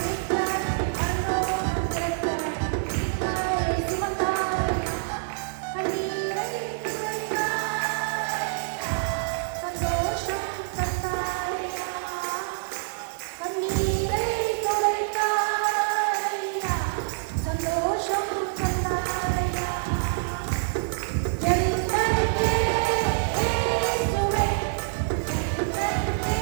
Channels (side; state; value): left; silent; digital silence